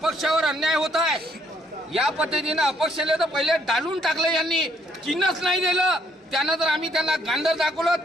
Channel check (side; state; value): both; normal; correlation 0.69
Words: अन्याय होत आहे या पद्धतीने अपक्षाला तर पहिले डालून टाकलं, यांनी चिन्हच नाही दिलं. त्यानं तर आम्ही त्यांना गांडर दाखवलं